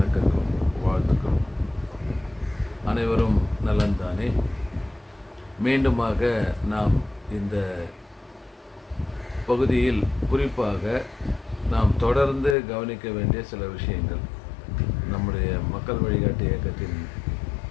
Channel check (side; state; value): right; drops out; at 12.6 s